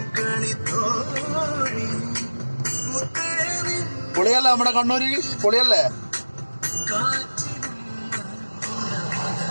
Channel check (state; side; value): inverted; both; correlation -1.00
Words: പൊളിയല്ലേ നമ്മുടെ കണ്ണൂര്, പൊളിയല്ലേ?